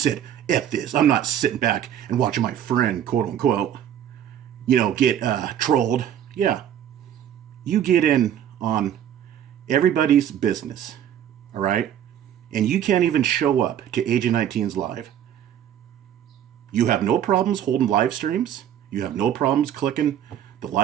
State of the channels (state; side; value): quieter; left; 10.2 dB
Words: F this. I'm not sitting back and watching my friend, quote unquote, get trolled. Yeah. You get in on everybody's business. All right? And you can't even show up to Agent 19's live. You have no problems holding live streams. You have no problems clicking the